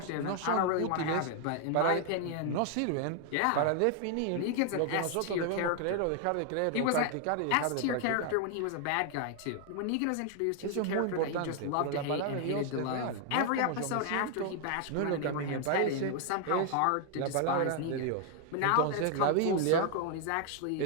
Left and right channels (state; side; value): different; both; correlation 0.00